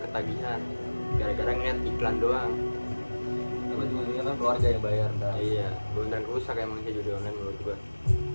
gara-gara ngeliat iklan doang. Tapi ujungnya kan keluarga yang bayar ntar. Iya, beneran rusak emang sih judi online menurut gua.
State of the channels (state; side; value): inverted; both; correlation -1.00